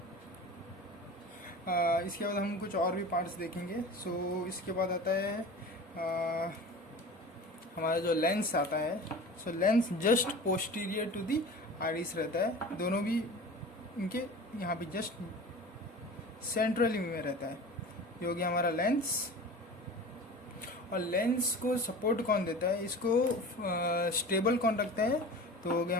इसके बाद हम कुछ और भी पार्ट्स देखेंगे। सो इसके बाद आता है हमारा जो लेंस आता है। So lens just posterior to the iris रहता है, दोनों भी इनके यहाँ पे जस्ट सेंट्रली में रहता है। ये हो गया हमारा लेंस। और लेंस को सपोर्ट कौन देता है, इसको स्टेबल कौन रखता है? तो हो गया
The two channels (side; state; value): both; normal; correlation 0.36